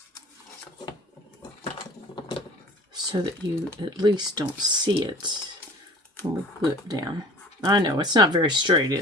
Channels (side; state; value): both; normal; correlation 0.45